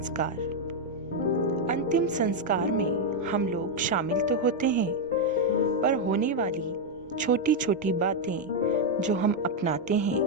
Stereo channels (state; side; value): normal; both; correlation 0.01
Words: अंतिम संस्कार में हम लोग शामिल तो होते हैं, पर होने वाली छोटी छोटी बातें जो हम अपनाते